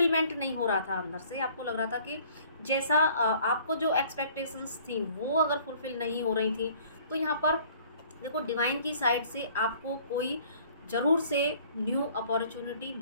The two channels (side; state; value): both; inverted; correlation -0.55